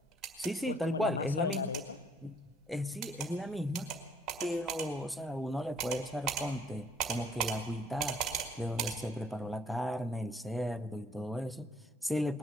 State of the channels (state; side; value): normal; both; correlation 0.63